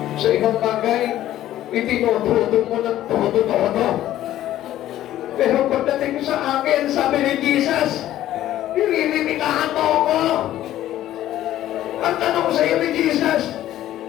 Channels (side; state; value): right; quieter; 13.3 dB